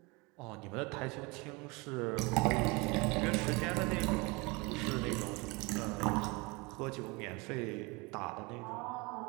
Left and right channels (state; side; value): quieter; left; 26.7 dB